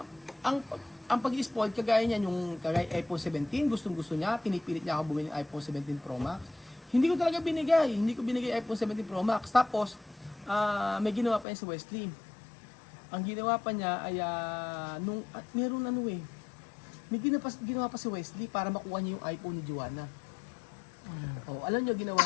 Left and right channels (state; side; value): drops out; right; at 11.5 s